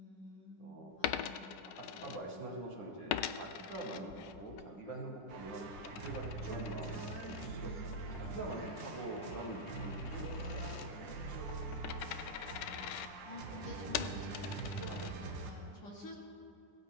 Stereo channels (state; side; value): late; right; 11 ms